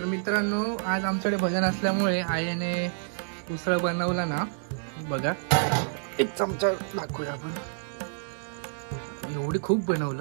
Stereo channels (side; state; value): left; silent; digital silence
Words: मित्रांनो, आज आमच्याकडे भजन असल्यामुळे आईने उसळ बनवला ना. बघा एक चमचा दाखवूया आपण. एवढी खूप